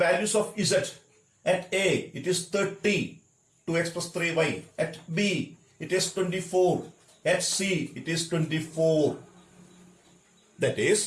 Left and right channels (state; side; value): identical; both; correlation 1.00